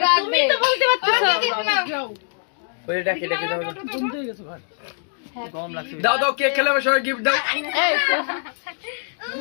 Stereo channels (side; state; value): right; silent; digital silence